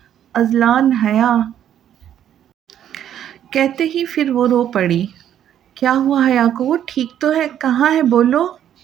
اذلان حیا کہتے ہی پھر وہ رو پڑی۔ کیا ہوا حیا کو؟ وہ ٹھیک تو ہے، کہاں ہے بولو؟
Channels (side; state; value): left; quieter; 10.3 dB